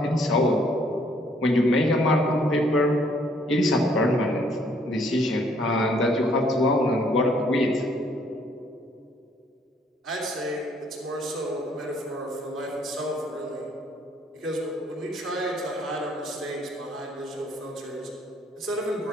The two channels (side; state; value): both; normal; correlation 0.65